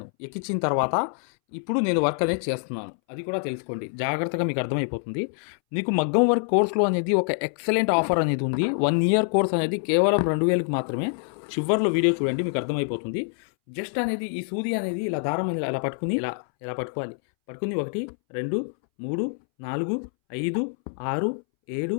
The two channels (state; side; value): silent; right; 61 dB below the other